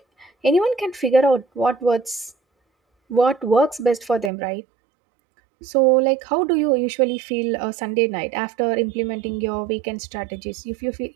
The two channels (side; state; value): left; drops out; at 4.3 s